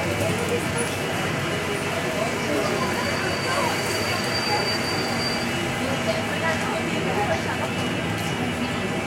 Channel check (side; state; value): both; identical; correlation 1.00